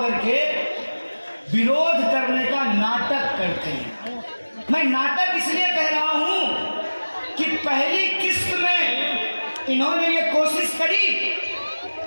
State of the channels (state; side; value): inverted; both; correlation -1.00